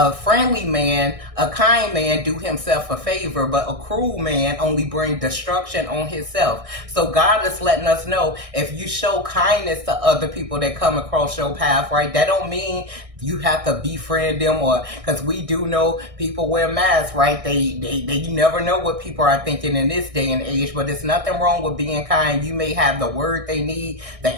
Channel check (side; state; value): left; late; 1.6 ms